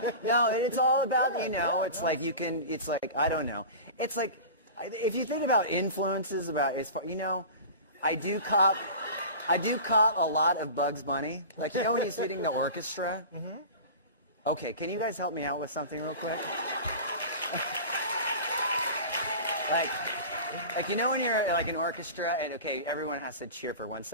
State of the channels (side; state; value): both; inverted; correlation -0.34